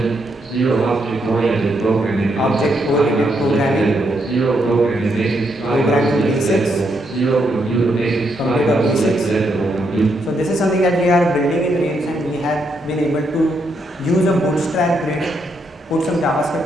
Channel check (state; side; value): normal; both; correlation 0.78